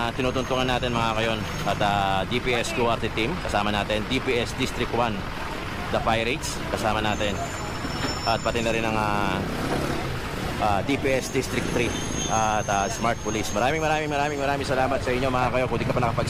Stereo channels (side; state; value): both; identical; correlation 1.00